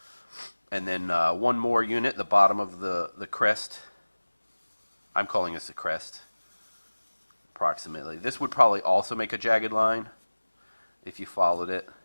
And then one more unit, the bottom of the crest. I'm calling this a crest, approximately. This would probably also make a jagged line if you followed it.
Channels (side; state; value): both; inverted; correlation -1.00